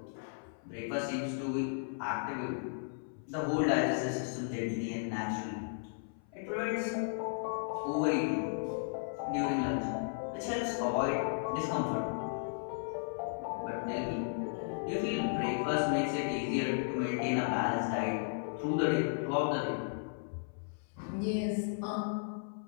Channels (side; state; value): right; silent; 54 dB below the other